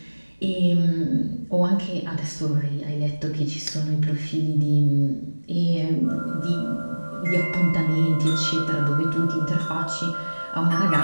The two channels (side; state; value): both; inverted; correlation -1.00